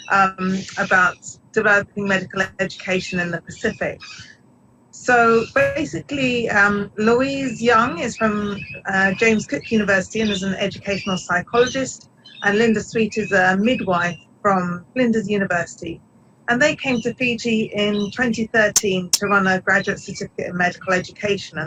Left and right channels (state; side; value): identical; both; correlation 1.00